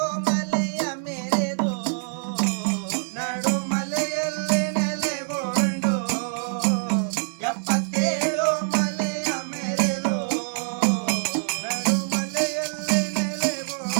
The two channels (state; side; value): silent; left; digital silence